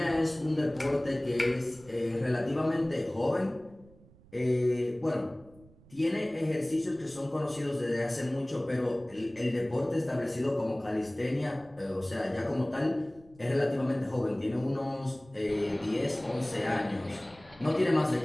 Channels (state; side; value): noise; right; rumble, 25 dB below the sound